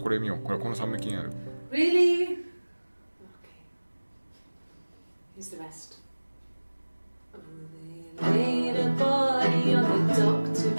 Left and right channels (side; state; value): both; inverted; correlation -1.00